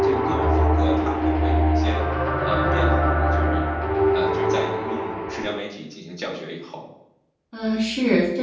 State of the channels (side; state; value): both; identical; correlation 1.00